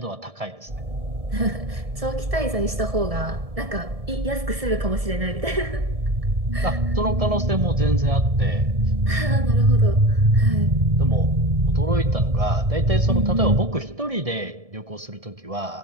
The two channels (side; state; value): left; late; 1.7 ms